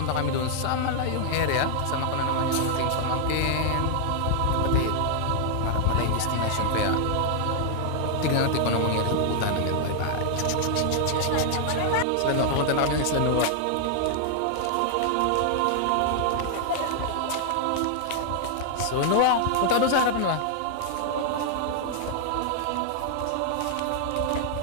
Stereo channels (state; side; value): different; both; correlation 0.00